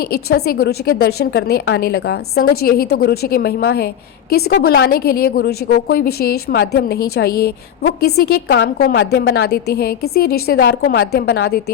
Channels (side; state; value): right; quieter; 9.5 dB